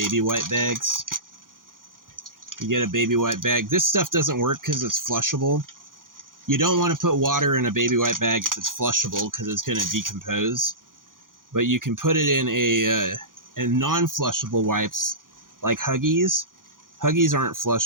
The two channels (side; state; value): left; late; 0.90 ms